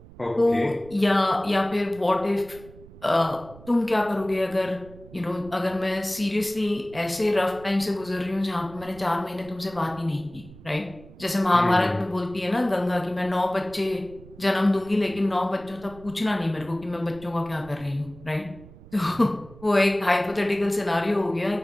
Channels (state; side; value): noise; right; rumble, 20 dB below the sound